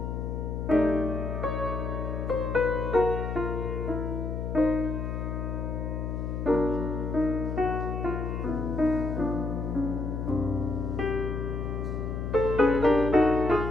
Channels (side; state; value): left; noise; hum, 3 dB below the sound